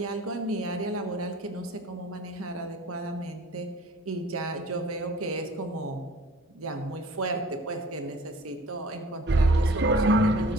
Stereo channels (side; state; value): both; normal; correlation 0.49